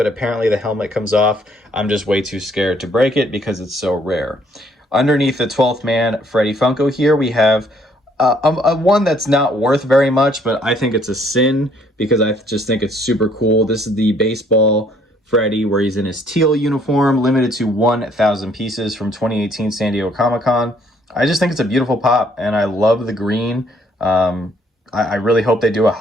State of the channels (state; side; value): normal; both; correlation 0.64